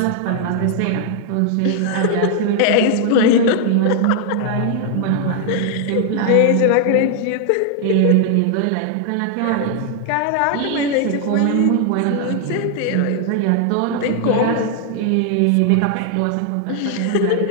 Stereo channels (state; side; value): different; both; correlation 0.00